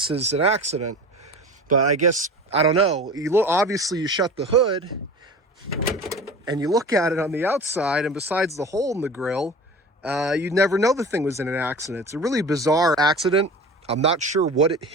is an accident. But I guess, I don't know, obviously you shut the hood and you look at it on the outside, and besides the hole in the grill, you'd never know the thing was in an accident. It's a really bizarre accident. I'm not sure what it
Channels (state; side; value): normal; both; correlation 0.36